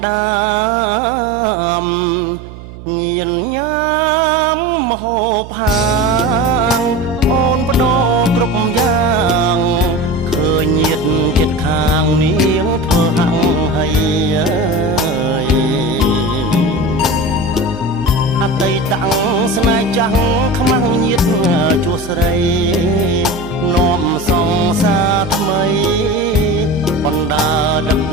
ដាមញៀនញ៉ាំមហូបហាងអូនបដោគ្រប់យ៉ាងឃើញញាតចិត្តខាងនាងធ្វើហាំងហើយអតីតស្នេហ៍ចាស់ខ្មាំងញាតជួស្រីនាំសងសាថ្មីបណ្ដាដឹក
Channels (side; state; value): right; noise; hum, 15 dB below the sound